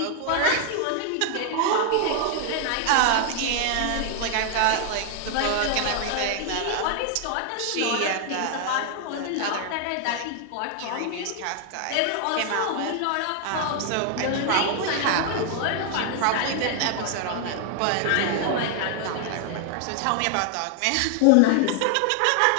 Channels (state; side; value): different; both; correlation 0.00